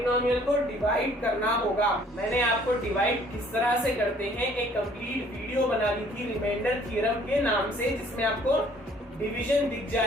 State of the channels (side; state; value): both; normal; correlation 0.58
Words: को डिवाइड करना होगा। मैंने आपको डिवाइड किस तरह से करते हैं एक कंप्लीट वीडियो बना दी थी रिमाइंडर थ्योरम के नाम से, जिसमें आपको डिवीजन दिख